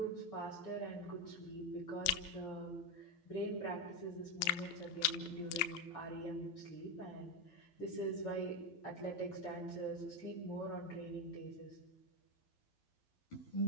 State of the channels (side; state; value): right; late; 12 ms